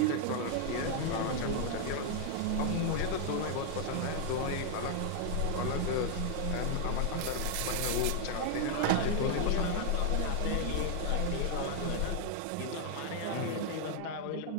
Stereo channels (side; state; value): both; different; correlation 0.00